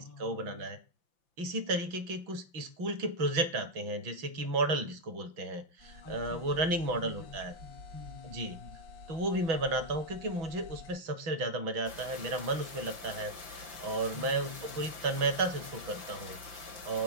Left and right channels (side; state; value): left; late; 5.9 ms